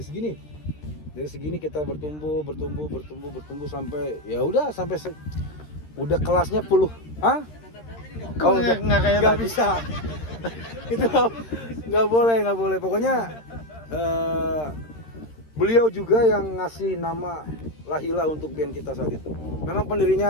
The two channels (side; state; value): right; late; 13 ms